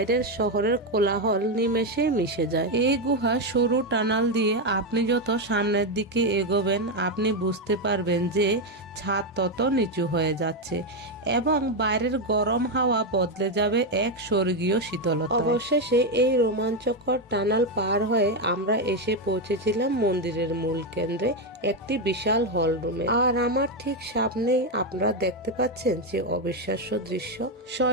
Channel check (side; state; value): both; normal; correlation 0.07